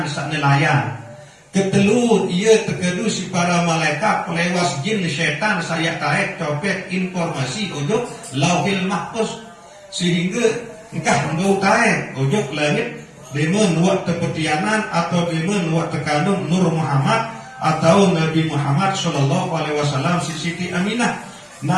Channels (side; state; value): both; identical; correlation 1.00